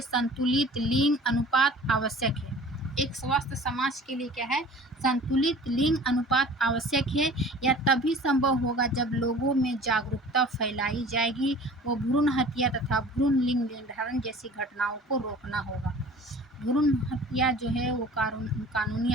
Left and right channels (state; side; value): normal; both; correlation 0.44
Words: संतुलित लिंग अनुपात आवश्यक है। एक स्वस्थ समाज के लिए क्या है, संतुलित लिंग अनुपात आवश्यक है। यह तभी संभव होगा जब लोगों में जागरूकता फैलाई जाएगी। वो भ्रूण हत्या तथा भ्रूण लिंग निर्धारण जैसी घटनाओं को रोकना होगा। भ्रूण हत्या जो है वो कानूनी